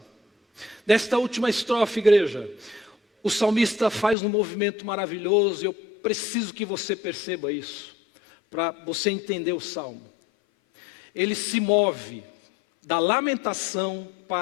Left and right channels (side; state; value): right; drops out; at 4.2 s